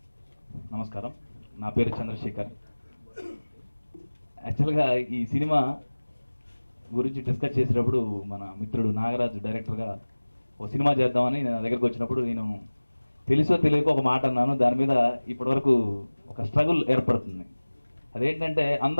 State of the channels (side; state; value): both; inverted; correlation -1.00